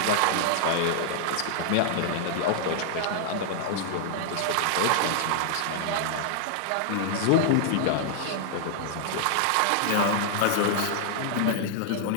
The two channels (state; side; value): different; both; correlation 0.00